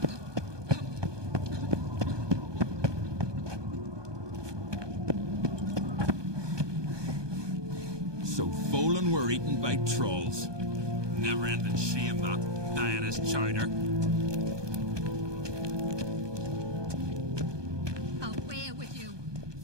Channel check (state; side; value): late; left; 1.2 ms